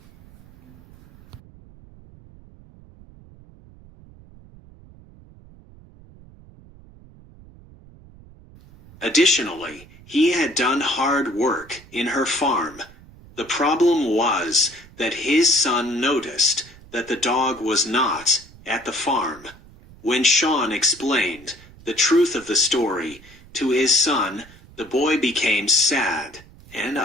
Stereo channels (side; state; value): right; noise; rumble, 23 dB below the sound